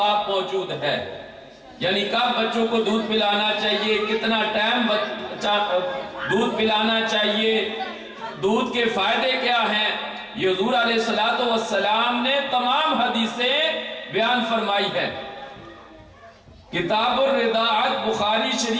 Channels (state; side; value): identical; both; correlation 1.00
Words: موجود ہے، یعنی کب بچوں کو دودھ پلانا چاہیے، کتنا ٹائم دودھ پلانا چاہیے، دودھ کے فائدے کیا ہیں، یہ حضور علیہ السلام نے تمام حدیثیں بیان فرمائی ہے۔ کتاب الرضاعت بخاری